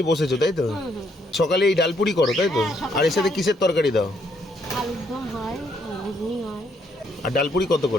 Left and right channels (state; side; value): normal; both; correlation 0.71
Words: বসেছো, তাই তো? সকালে এই ডালপুরি করো, তাই তো? আর এর সাথে কিসের তরকারি দাও? আর ডালপুরি কত